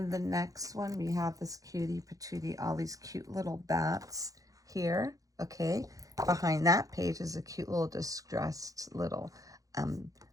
the next one, we have this cutie patootie, all these cute little bats here. Okay. Behind that page is a cute little distressed little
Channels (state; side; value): late; left; 0.17 ms